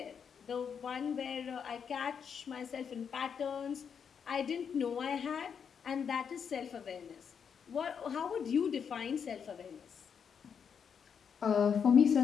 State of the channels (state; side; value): quieter; right; 7.0 dB